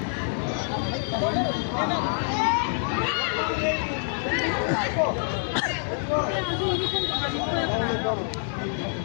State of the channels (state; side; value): silent; right; 61 dB below the other